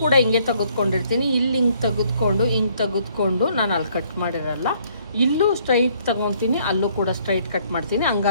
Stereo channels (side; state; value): both; inverted; correlation -0.64